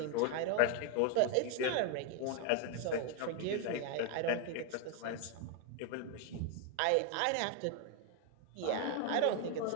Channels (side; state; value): both; different; correlation 0.01